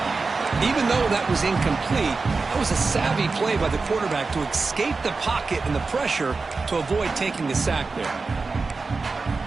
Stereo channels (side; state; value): left; quieter; 4.1 dB